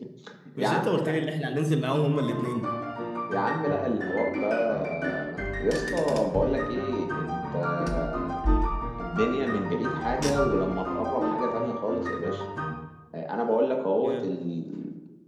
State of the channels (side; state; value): both; identical; correlation 1.00